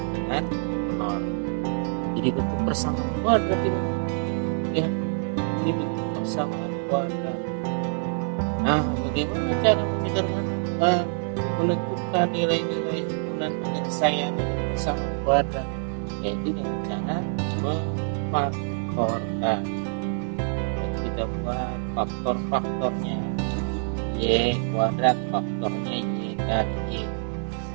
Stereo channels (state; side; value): silent; left; 61 dB below the other